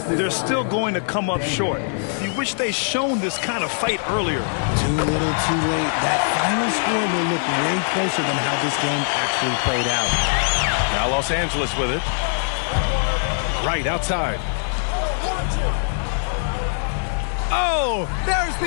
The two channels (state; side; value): silent; right; digital silence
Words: they're still going to come up short. You wish they shown this kind of fight earlier. Too little, too late. That final score will look way closer than how this game actually played out. Now Los Angeles with it. Right outside. Oh, there's